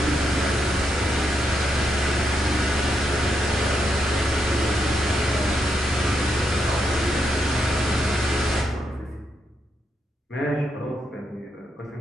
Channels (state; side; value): normal; both; correlation 0.81